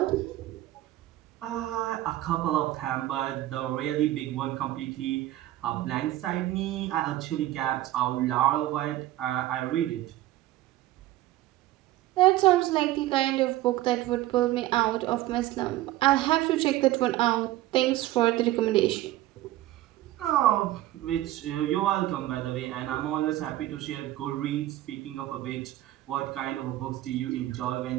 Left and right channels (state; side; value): quieter; left; 15.4 dB